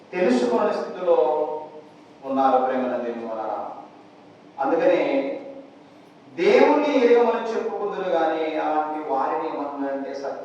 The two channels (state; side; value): identical; both; correlation 1.00